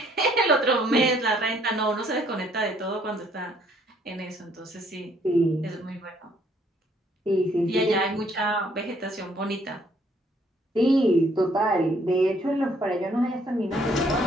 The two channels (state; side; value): normal; both; correlation 0.65